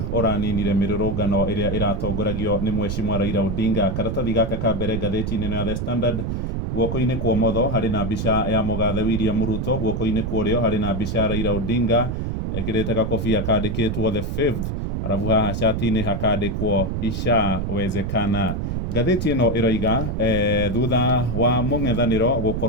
ũraninire mĩrũrũngano ĩrĩa ĩratongoragio nĩ Mheshimiwa Raila Odinga. Karatathi gaka ka mbere ngathĩti-inĩ ya The Standard, guoko-inĩ kwa ũmotho harĩ na mbica ya mũgathe William Ruto, guoko-inĩ kwa ũrĩo harĩ na mbica ya Raila Odinga ekĩrĩte gakobia kandĩkĩtwo the fifth, arabu haha cati-inĩ hakandĩkwo ishawezekana. Ngathĩti ĩno ĩroiga thutha wa mũng'ethanĩro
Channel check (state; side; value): noise; right; rumble, 2 dB below the sound